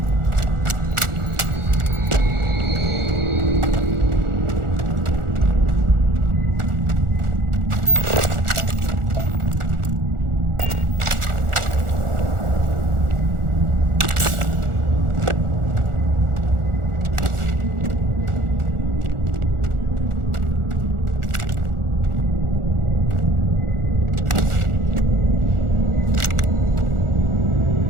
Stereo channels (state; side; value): late; left; 1.4 ms